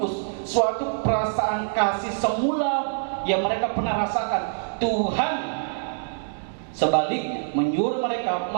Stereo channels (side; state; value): left; silent; digital silence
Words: suatu perasaan kasih semula yang mereka pernah rasakan. Tuhan Sebaliknya, menyuruh mereka